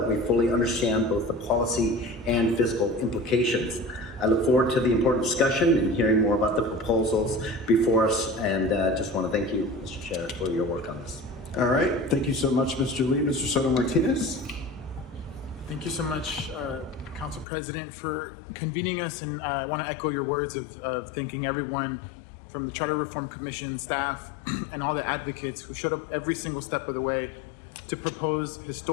we fully understand both the policy and fiscal implications. I look forward to the important discussion and hearing more about the proposals before us, and just want to thank you, Mr. Chair, for your work on this. All right, thank you so much, Mr. Lee. Mr. Soto Martinez. Thank you so much, Council President, for convening us, and I want to echo your words of thanking everyone from the Charter Reform Commission staff and all the advocates who showed up every single step of the way to propose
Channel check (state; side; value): drops out; right; at 17.4 s